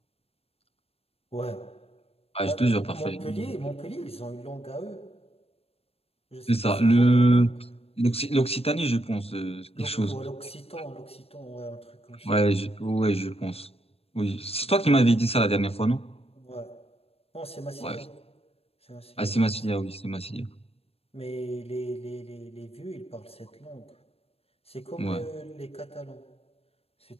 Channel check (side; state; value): right; late; 0.28 ms